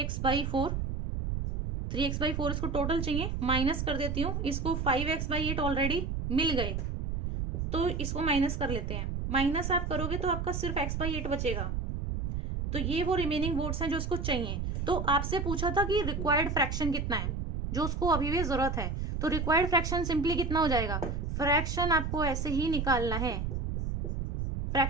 3x/4 इसको टोटल चाहिए, माइनस कर देती हूँ इसको, 5x/8 ऑलरेडी मिल गए, तो इसको माइनस कर लेते हैं। माइनस आप करोगे तो आपका सिर्फ x/8 बचेगा। तो ये वो रिमेनिंग वोट्स हैं जो उसको चाहिए। तो आपसे पूछा था कि रिक्वायर्ड फ्रैक्शन कितना है जो उसको अभी भी जरूरत है, तो रिक्वायर्ड फ्रैक्शन सिंपली कितना हो जाएगा, फ्रैक्शन आपको ऐसे ही निकालना है।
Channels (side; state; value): right; noise; rumble, 2 dB below the sound